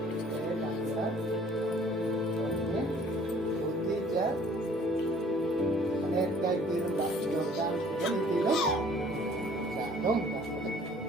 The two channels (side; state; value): both; normal; correlation 0.55